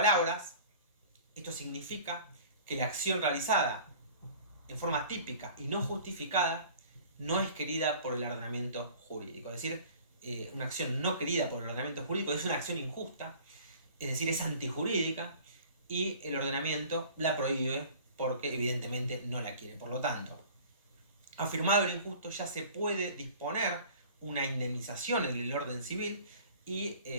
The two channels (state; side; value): inverted; both; correlation -0.46